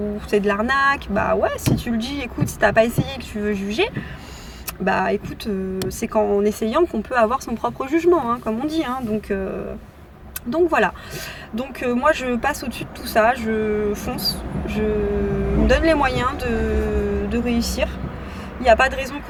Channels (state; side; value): identical; both; correlation 1.00